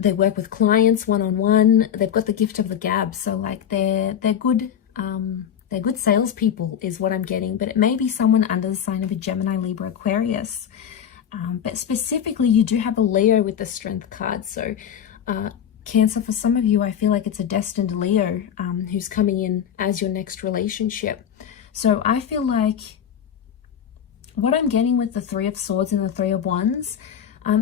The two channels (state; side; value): quieter; right; 9.0 dB